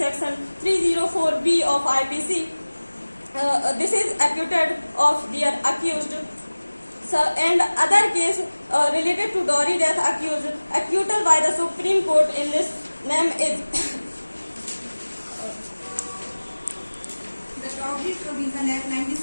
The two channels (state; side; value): inverted; both; correlation -1.00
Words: 304B of IPC. This is acquitted of their accused. So, and other case related to dowry death accused, acquittal by the Supreme Court in this name is The Dowry Provision Act